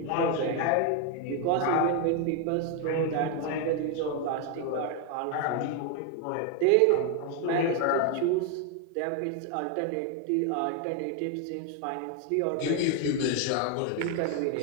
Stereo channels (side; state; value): both; different; correlation 0.01